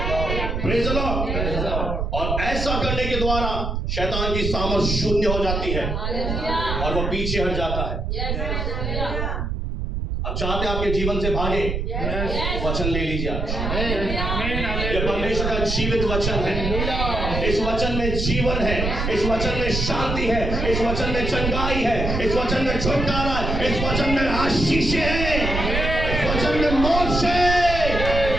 Praise the Lord. और ऐसा करने के द्वारा शैतान की सामर्थ शून्य हो जाती है और वो पीछे हट जाता है। अब चाहते आपके जीवन से भागे, वचन ले लीजिए आप। ये परमेश्वर का जीवित वचन है, इस वचन में जीवन है, इस वचन में शांति है, इस वचन में चंगाई है, इस वचन में छुटकारा है, इस वचन में आशीष है, इस वचन में मोक्ष है।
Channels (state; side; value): noise; right; rumble, 2 dB below the sound